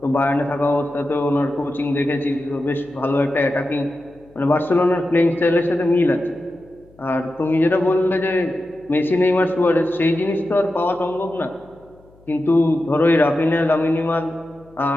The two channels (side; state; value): left; noise; hum, 28 dB below the sound